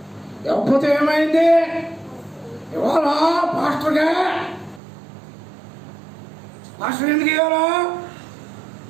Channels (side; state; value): left; drops out; at 4.8 s